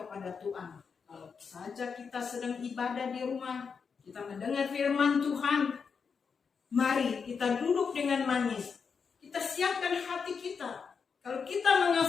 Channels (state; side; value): quieter; right; 5.9 dB